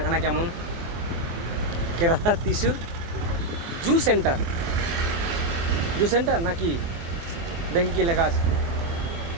কেমন। কেরালার ত্রিশূর জু সেন্টার, জু সেন্টার নাকি দেখি কি লেখা আছে।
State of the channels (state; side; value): late; left; 24 ms